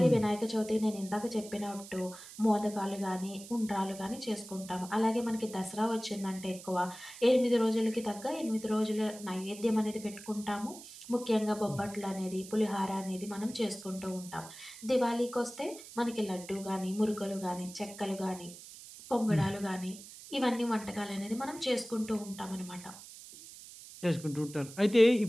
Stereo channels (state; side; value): noise; right; hiss, 16 dB below the sound